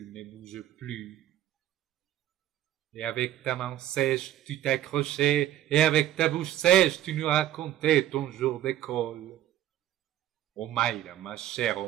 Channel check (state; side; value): quieter; left; 12.4 dB